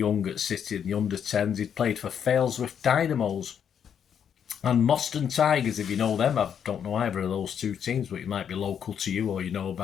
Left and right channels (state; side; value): quieter; right; 8.2 dB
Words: at City in the under-10s. He'd played for Failsworth Dynamos and Moston Tigers, if you know them. I don't know either of those two teams, but it might be local to you or you know